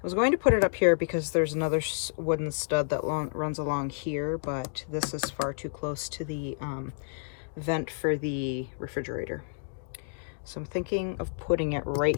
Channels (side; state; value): right; silent; digital silence